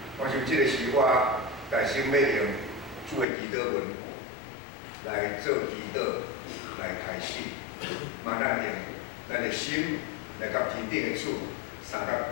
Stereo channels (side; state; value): right; drops out; at 3.2 s